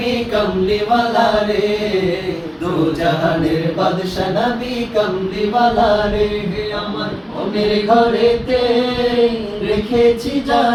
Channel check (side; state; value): both; identical; correlation 1.00